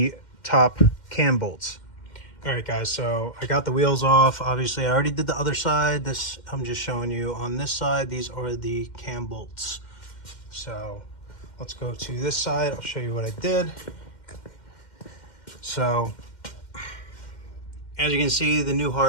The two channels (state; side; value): late; right; 2.1 ms